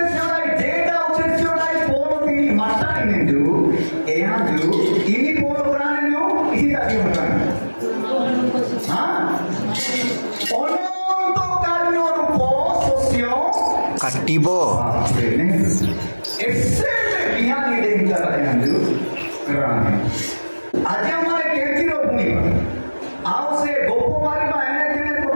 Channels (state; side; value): inverted; both; correlation -1.00